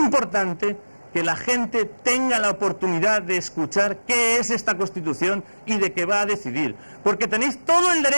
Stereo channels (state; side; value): inverted; both; correlation -1.00